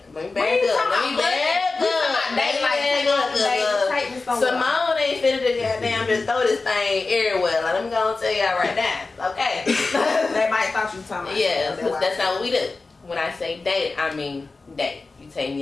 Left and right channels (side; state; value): right; quieter; 3.8 dB